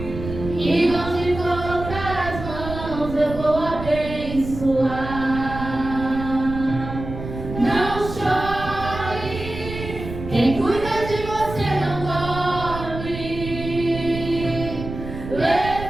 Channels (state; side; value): noise; right; rumble, 9 dB below the sound